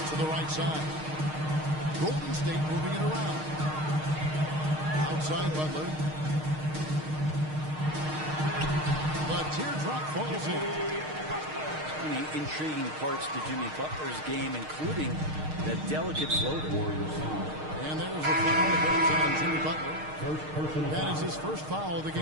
To the right side. Golden State moving it around. Outside Butler. The teardrop falls in. Many intriguing parts to Jimmy Butler's game, including that delicate floater. And there's a foul that goes on Jimmy Butler. That is his first foul of the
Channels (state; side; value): late; left; 6.5 ms